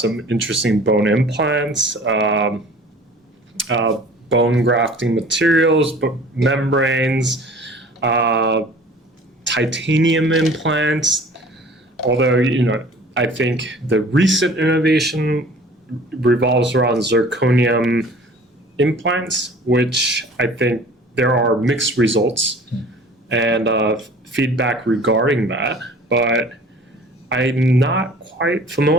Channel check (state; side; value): normal; both; correlation 0.47